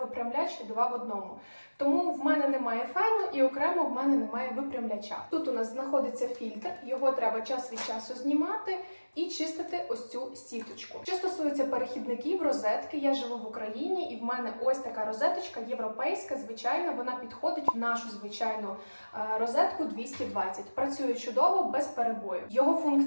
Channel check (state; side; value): inverted; both; correlation -1.00